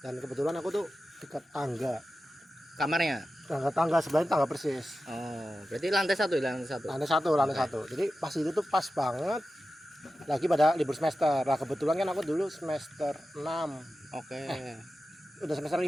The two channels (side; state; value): both; normal; correlation 0.93